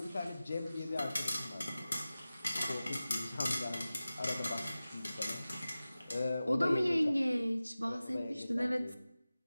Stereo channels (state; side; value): inverted; both; correlation -0.96